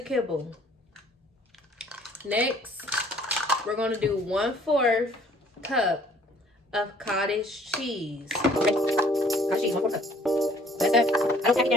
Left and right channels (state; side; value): normal; both; correlation 0.58